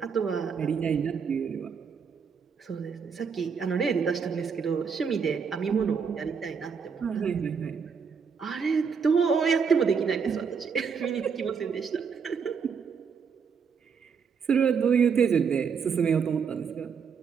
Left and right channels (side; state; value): left; quieter; 6.2 dB